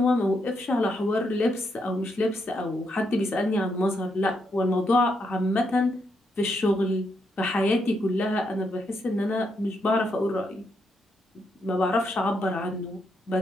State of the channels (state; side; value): normal; both; correlation 0.79